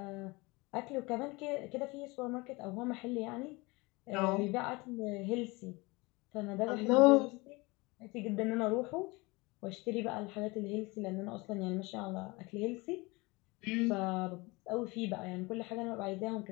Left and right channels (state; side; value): quieter; right; 24.5 dB